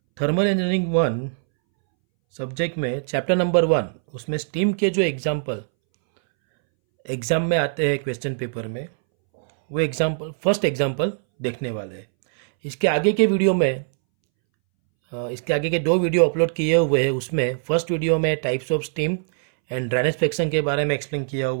थर्मल इंजीनियरिंग 1 सब्जेक्ट में चैप्टर नंबर 1 उसमें स्टीम के जो एग्ज़ाम में आते हैं क्वेश्चन पेपर में, वो फर्स्ट एग्जाम्पल देखने वाले हैं। इसके आगे के वीडियो में इसके आगे के 2 वीडियो अपलोड किए हुए हैं। उसमें फर्स्ट वीडियो में types of steam and drainage friction के बारे में एक्सप्लेन किया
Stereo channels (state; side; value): silent; left; 63 dB below the other